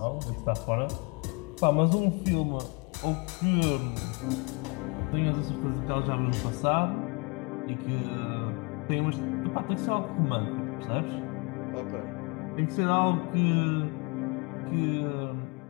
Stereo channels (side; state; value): right; quieter; 30.3 dB